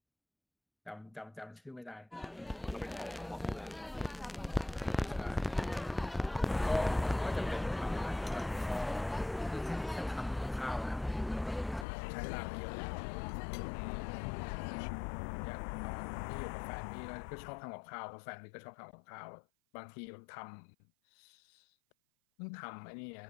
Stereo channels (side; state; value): right; drops out; at 11.9 s